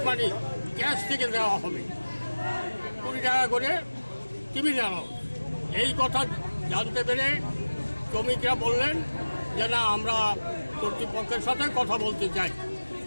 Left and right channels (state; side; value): inverted; both; correlation -1.00